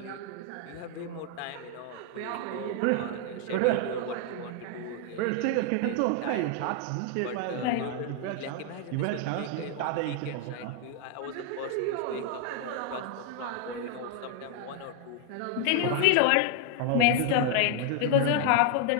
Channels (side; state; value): both; different; correlation 0.00